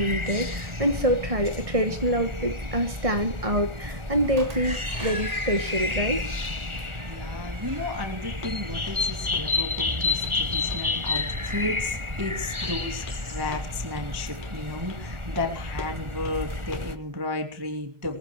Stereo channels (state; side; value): late; left; 1.4 ms